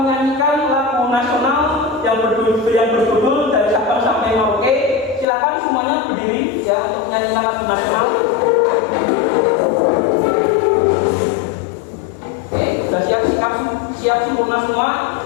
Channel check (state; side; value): drops out; right; at 5.2 s